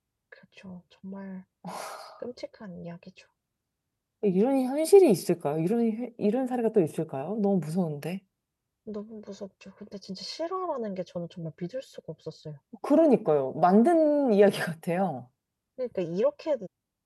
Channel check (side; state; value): both; identical; correlation 1.00